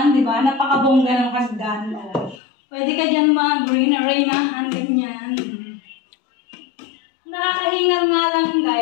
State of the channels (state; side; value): drops out; right; at 2.4 s